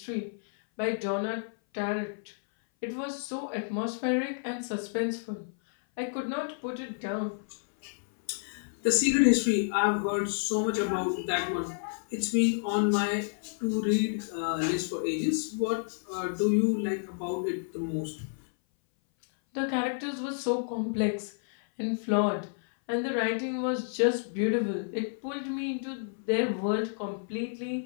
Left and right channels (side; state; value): right; silent; 58 dB below the other